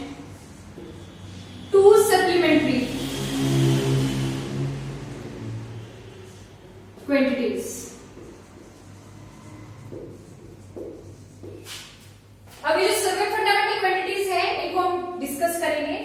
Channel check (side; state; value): both; identical; correlation 1.00